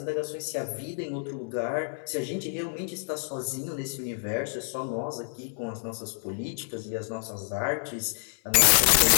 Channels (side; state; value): right; silent; 59 dB below the other